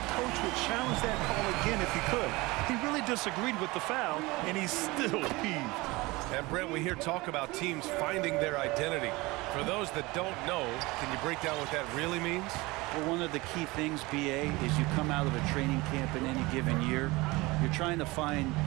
Coach would challenge that call again if he could. He really disagreed with the foul, and he's still peeved. And Brent, we hear talk about teams finding their identity. For those that don't know, can you break down what that really means? Well, one of the key things, BA, is you come out of a training camp in any given year. You're trying to find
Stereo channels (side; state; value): left; quieter; 22.3 dB